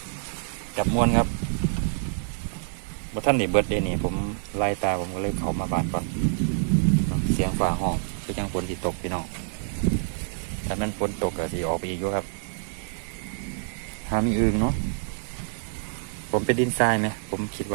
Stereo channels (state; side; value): silent; left; digital silence